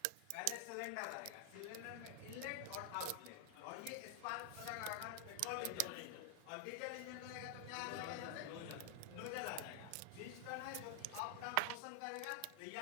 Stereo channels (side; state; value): both; different; correlation 0.00